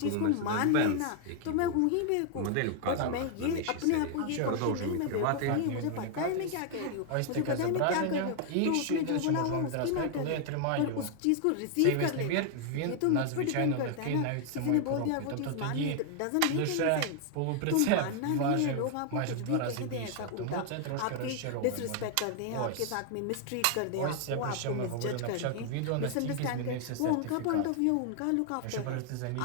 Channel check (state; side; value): different; both; correlation 0.00